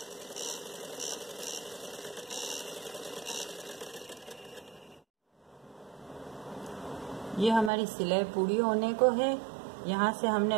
ये हमारी सिलाई पूरी होने को है। यहाँ से हमने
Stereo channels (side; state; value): left; drops out; at 7.7 s